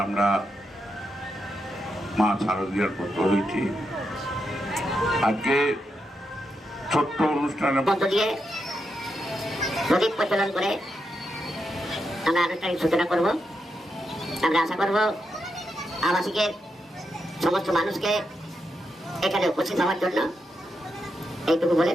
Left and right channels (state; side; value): normal; both; correlation 0.84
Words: আমরা মা শারদীয়ার পত্র হয়েছি, আজকে ছোট্ট অনুষ্ঠানের মধ্য দিয়ে প্রদীপ প্রচলন করে আমরা আনুষ্ঠানিক সূচনা করব। আমরা আশা করব আবাসিকের সমস্ত মানুষকে এখানে উপস্থিত হওয়ার জন্য। এইটুকু বলে